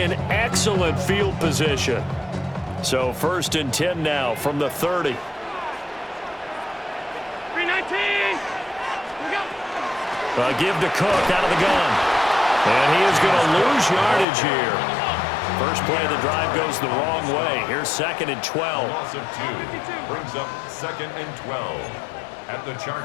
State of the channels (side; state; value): right; drops out; at 14.2 s